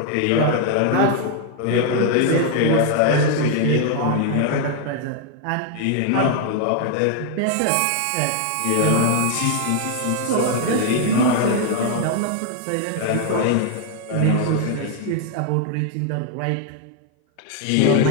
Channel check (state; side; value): different; both; correlation 0.00